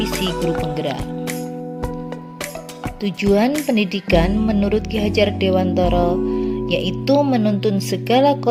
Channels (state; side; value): identical; both; correlation 1.00